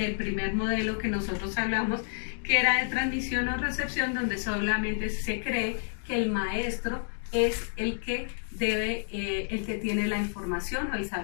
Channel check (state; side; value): silent; right; digital silence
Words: primer modelo que nosotros hablamos, que era de transmisión o recepción, donde solamente se cree que el maestro es el que tiene la información o el